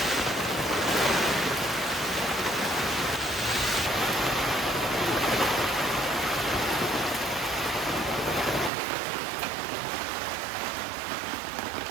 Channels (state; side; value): drops out; left; at 8.7 s